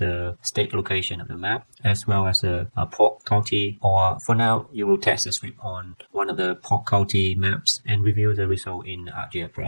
state location of the map, as well as the Polk County. Or for now, you will test the script on one of the Polk County maps and review the result in Arcgis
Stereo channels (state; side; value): inverted; both; correlation -1.00